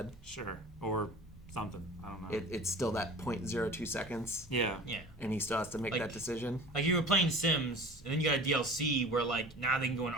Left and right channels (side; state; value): both; normal; correlation 0.40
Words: Sure. Or something. I don't know. It's still that 0.02 seconds, yeah. Yeah. and he still has to make Like- that decision. Like you were playing Sims, and then you got a DLC where like now they can go on